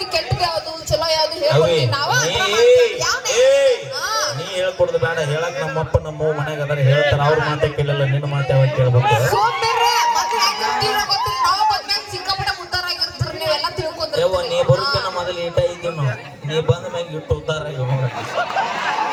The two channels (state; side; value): identical; both; correlation 1.00